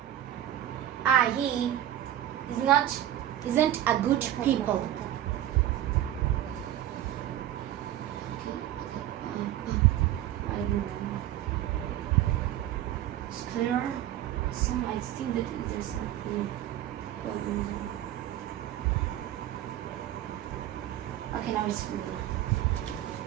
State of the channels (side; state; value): left; quieter; 12.5 dB